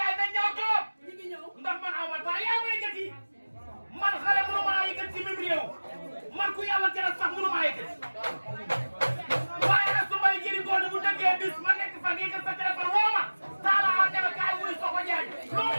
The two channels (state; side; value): inverted; both; correlation -1.00